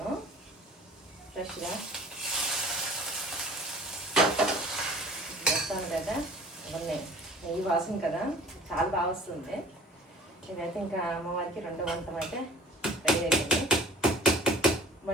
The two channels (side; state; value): both; normal; correlation 0.47